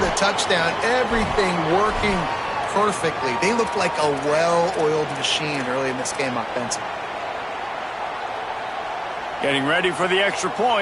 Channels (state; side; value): identical; both; correlation 1.00